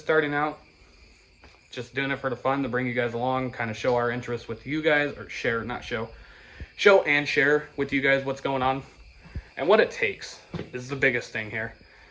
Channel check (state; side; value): identical; both; correlation 1.00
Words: starting out, just doing it for the fun, to bring you guys along, kind of show our interest with you guys, or show and share with you guys what's going on and what it takes is the biggest thing here.